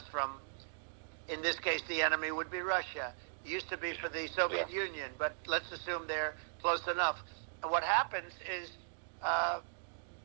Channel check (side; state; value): left; silent; digital silence